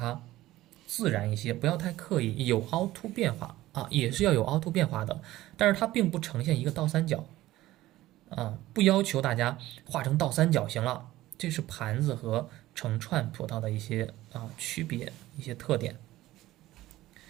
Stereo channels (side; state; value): left; quieter; 16.2 dB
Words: 自然一些，不要太刻意，有凹凸变化啊，也是要有凹凸变化的，但是它并不呈现一个倒三角啊，不要求大家画成倒三角形了，这是盘子和成串葡萄的一些区别，一些特点，